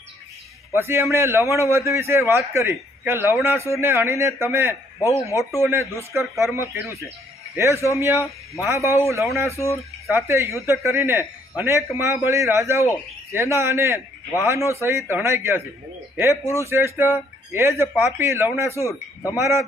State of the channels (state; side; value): normal; both; correlation 0.67